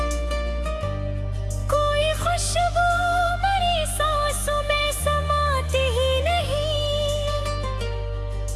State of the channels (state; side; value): identical; both; correlation 1.00